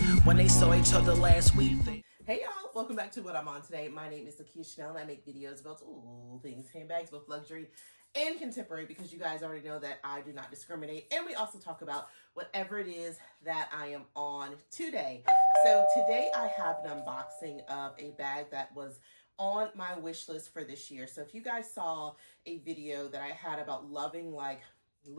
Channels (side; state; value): both; inverted; correlation -1.00